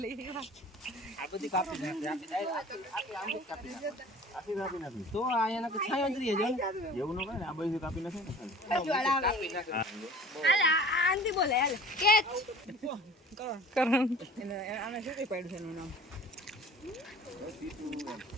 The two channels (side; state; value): both; normal; correlation 0.44